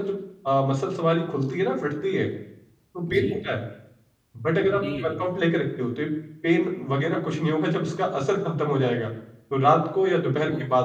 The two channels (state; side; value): identical; both; correlation 1.00